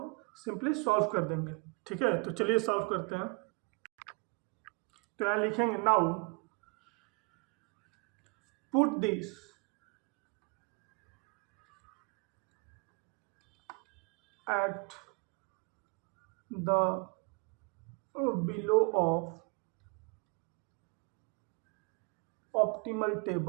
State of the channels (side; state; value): left; quieter; 34.4 dB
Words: सिंपली सॉल्व कर देंगे, ठीक है। तो चलिए सॉल्व करते हैं। तो यहाँ लिखेंगे now put this at the below of optimal